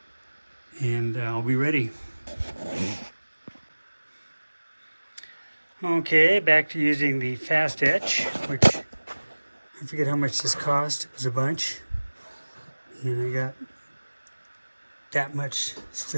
And I'll be ready. Okay, back to using the fast etch, which I forget how much this cost. It was a bunch. And I got that much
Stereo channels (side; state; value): both; inverted; correlation -1.00